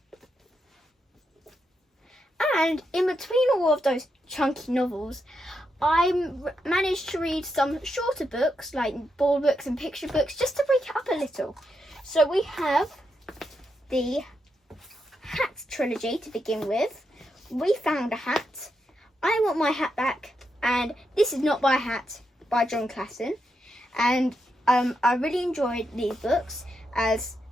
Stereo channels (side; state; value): both; normal; correlation 0.83